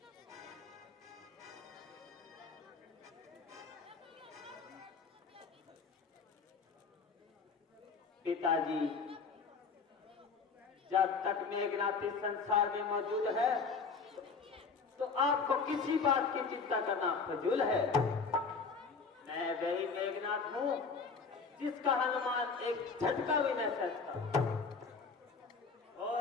पिताजी, जब तक मेघनाथ इस संसार में मौजूद है तो आपको किसी बात की चिंता करना फजूल है। मैं वही मेघनाथ हूं जिसका हनुमान एक झटका भी न सकता और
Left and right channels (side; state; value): right; quieter; 5.0 dB